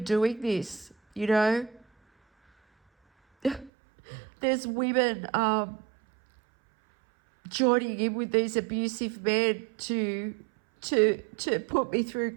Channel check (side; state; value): left; drops out; at 3.7 s